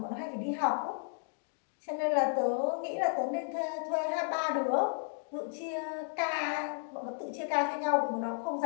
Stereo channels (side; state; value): right; silent; digital silence